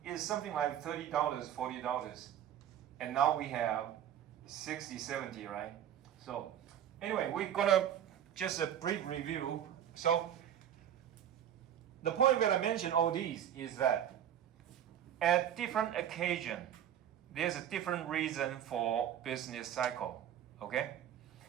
it's something like $30, $40. And now we have 60, 70, right? So anyway, we're gonna just a brief review. So the point that I mentioned all these is that at different occasion, there's a different reason for business cycle. Okay?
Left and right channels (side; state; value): left; quieter; 10.2 dB